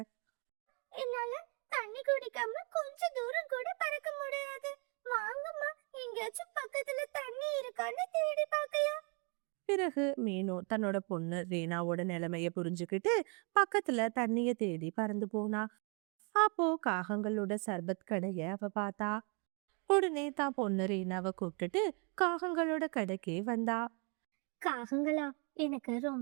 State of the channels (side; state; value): left; quieter; 35.7 dB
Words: என்னால தண்ணி குடிக்காம கொஞ்ச தூரம் கூட பறக்க முடியாது. வாங்கம்மா, எங்கேயாச்சும் பக்கத்துல தண்ணி இருக்கான்னு தேடி பார்க்கலாம். பிறகு மீனு தன்னோட பொண்ணு ரீனாவோட நிலைமைய புரிஞ்சுக்கிட்டு பக்கத்துல தண்ணிய தேடி பறந்து போனா. அப்போ காகங்களோட சர்பத் கடைய அவ பார்த்தா. உடனே தான் பொண்ணு ரீனாவை கூப்பிட்டுட்டு காகங்களோட கடைக்கே வந்தா. காகங்களா, எனக்கு